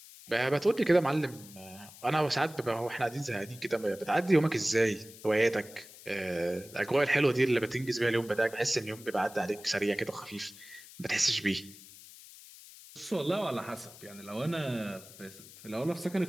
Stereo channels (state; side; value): noise; left; hiss, 19 dB below the sound